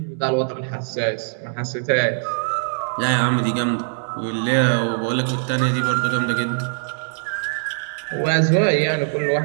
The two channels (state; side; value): silent; left; digital silence